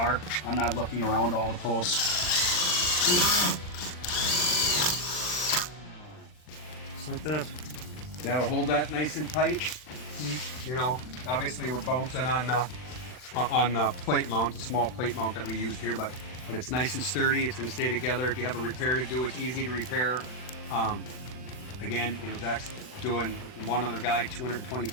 I'm not looking around all the posts. Just like that. That'll hold that nice and tight. You know, obviously we're bouncing on the plate mount, the small plate mount that we used here, but it's nice and sturdy. It's going to stay together. If you have a repair to do, it's easy to repair. Again, you know, Zach's doing one other guy 220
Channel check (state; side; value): late; right; 39 ms